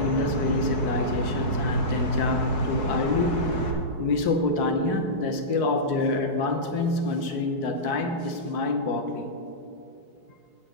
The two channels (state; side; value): late; left; 4.7 ms